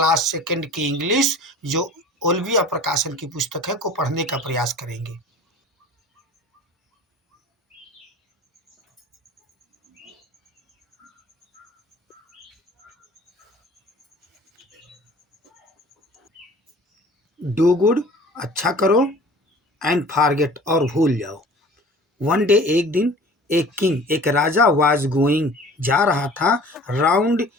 सेकंड की इंग्लिश जो ओल्विया प्रकाशन की पुस्तक है को पढ़ने का प्रयास करेंगे। डू गुड, अच्छा करो, एंड फॉरगेट और भूल जाओ। वन डे, एक दिन, एक किंग एक राजा वाज गोइंग जा रहा था राउंड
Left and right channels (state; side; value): normal; both; correlation 0.45